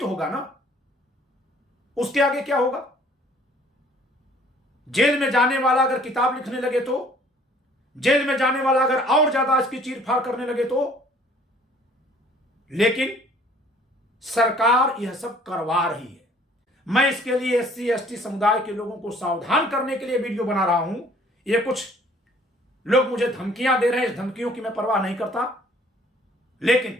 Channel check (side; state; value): both; normal; correlation 0.56